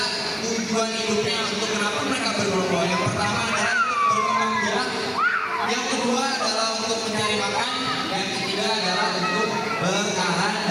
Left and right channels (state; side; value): identical; both; correlation 1.00